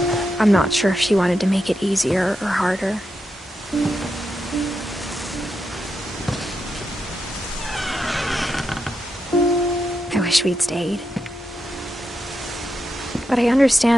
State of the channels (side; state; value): both; normal; correlation 0.85